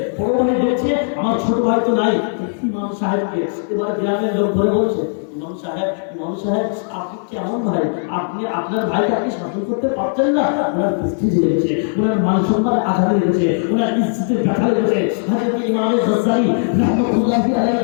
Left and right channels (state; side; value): silent; right; digital silence